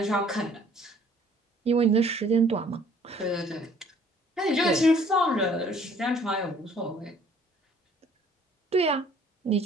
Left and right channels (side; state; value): both; normal; correlation 0.57